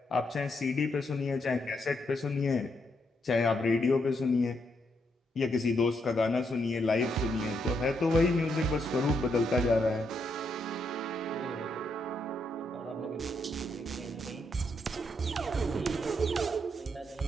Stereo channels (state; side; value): normal; both; correlation 0.78